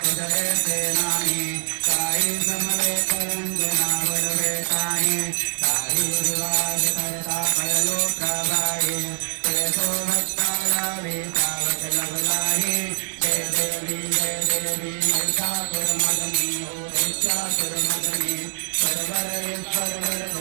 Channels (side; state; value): left; silent; 63 dB below the other